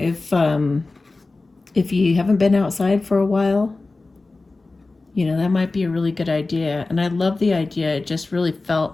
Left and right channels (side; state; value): right; quieter; 3.4 dB